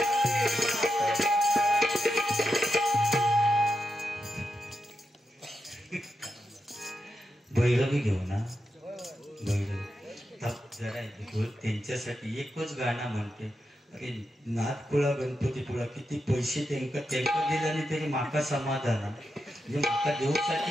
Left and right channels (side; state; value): both; normal; correlation 0.87